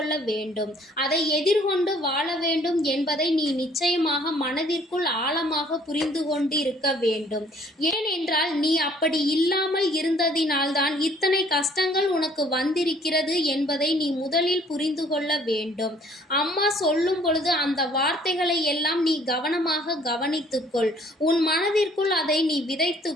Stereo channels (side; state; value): both; normal; correlation 0.58